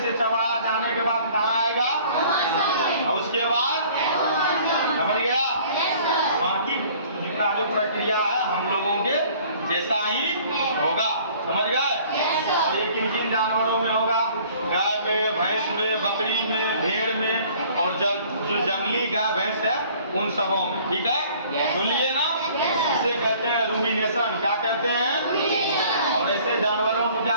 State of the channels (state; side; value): inverted; both; correlation -0.53